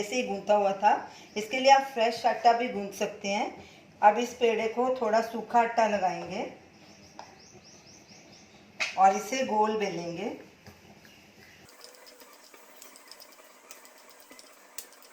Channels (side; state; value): both; identical; correlation 1.00